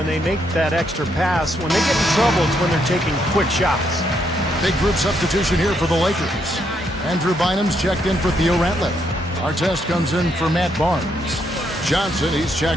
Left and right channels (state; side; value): normal; both; correlation 0.75